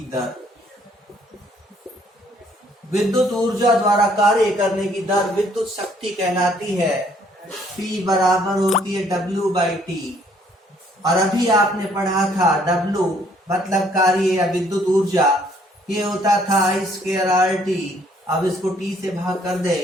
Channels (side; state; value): both; normal; correlation 0.64